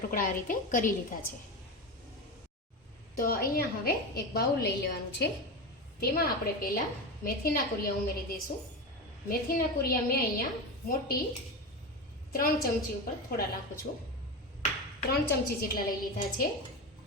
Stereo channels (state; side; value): normal; both; correlation 0.21